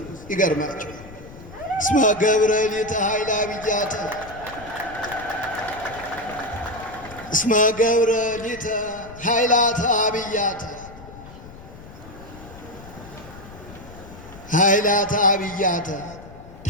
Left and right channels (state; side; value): noise; left; rumble, 17 dB below the sound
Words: ይገርማቸው እስመ ገብረ ሊተ ኃይለ አብያተ እስመ ገብረ ሊተ ኃይላተ አብያተ ኃይላተ አብያተ